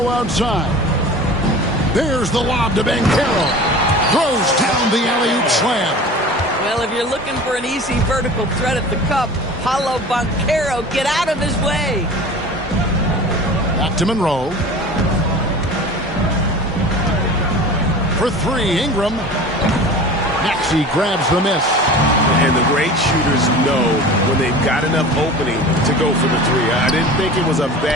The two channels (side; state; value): both; normal; correlation 0.38